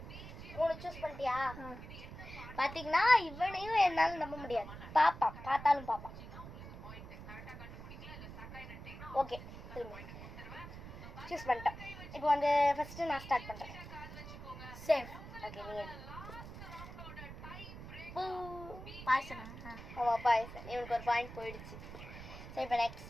3 சூஸ் பண்ணிட்டியா? பார்த்தீங்கன்னா இவனையும் என்னால் நம்ப முடியாது. பார்த்தாலும் பாப்பான். ஓகே, சூஸ் பண்ணிட்டேன். இப்போ வந்து ஃபஸ்ட்டு நான் ஸ்டார்ட் பண்ணுறேன். சேஃப். ஓகே, நீ பாய்சனா? ஆமாம், பாய்சன். இவனுக்கு ஒரு பாயிண்ட் போயிடுச்சு. சரி, இப்போ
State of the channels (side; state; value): right; noise; rumble, 12 dB below the sound